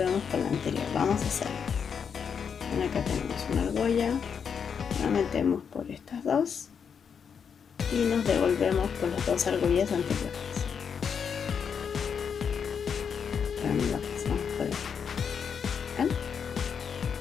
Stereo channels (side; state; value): right; quieter; 6.9 dB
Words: con la anterior. Vamos a hacerlo. ¿Ven? Acá tenemos una argolla, la metemos por estas dos y nos devolvemos con las dos argollas anteriores. La pasamos por aquí. ¿Ven?